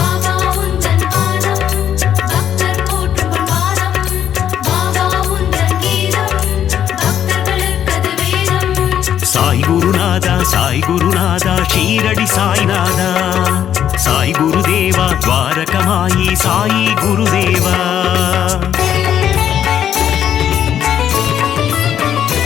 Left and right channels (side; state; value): right; quieter; 9.9 dB